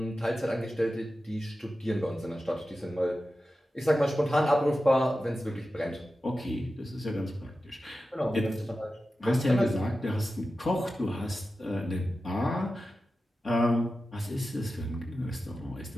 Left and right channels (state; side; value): normal; both; correlation 0.93